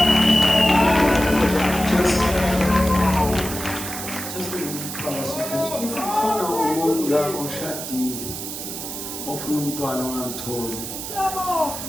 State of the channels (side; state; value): right; noise; hiss, 7 dB below the sound